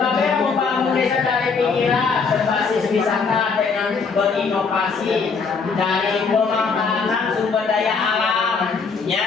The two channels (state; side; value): quieter; right; 5.1 dB